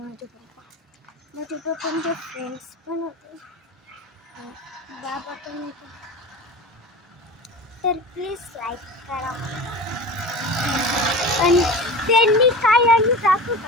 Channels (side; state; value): both; normal; correlation 0.33